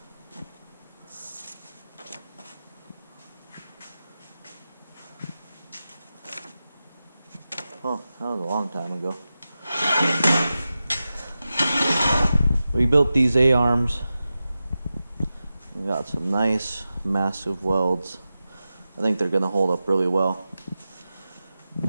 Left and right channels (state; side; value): inverted; both; correlation -0.93